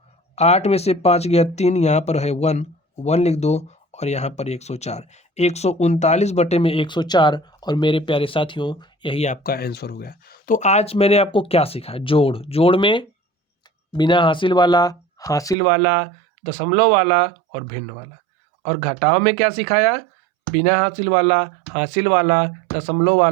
8 में से 5 गया 3, यहाँ पर है 1, 1 लिख दो, और यहाँ पर 104, 139 बटे में 104। और मेरे प्यारे साथियों यही आपका आंसर हो गया। तो आज मैंने आपको क्या सीखा, जोड़। जोड़ में बिना हासिल वाला, दशमलव वाला और भिन्न वाला। और घटाव में क्या सिखाया, बिना हासिल वाला, दशमलव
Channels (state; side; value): drops out; left; at 15.6 s